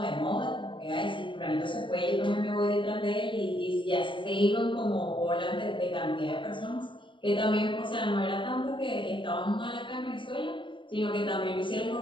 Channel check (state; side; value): late; right; 0.24 ms